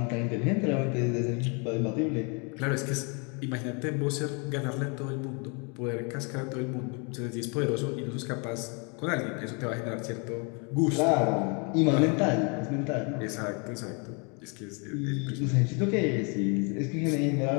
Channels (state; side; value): quieter; right; 34.2 dB